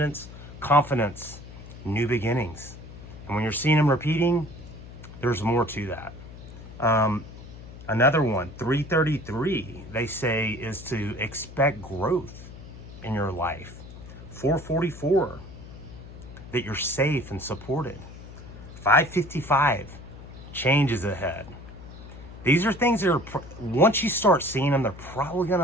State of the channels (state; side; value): noise; left; hum, 15 dB below the sound